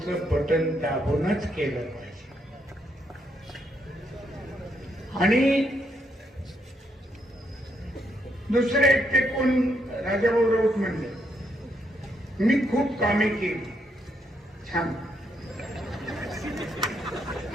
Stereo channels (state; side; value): normal; both; correlation 0.76